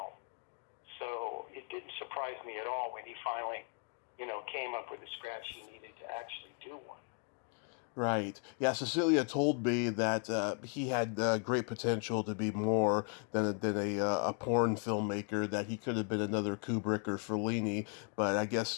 So it didn't surprise me at all when he finally, came up with the scratch he needed to actually do one. Right. Yeah, Cecilia told me that he had great potential to be more than a porn filmmaker, that he could have been another Kubrick or Fellini, but I guess,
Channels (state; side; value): quieter; right; 38.8 dB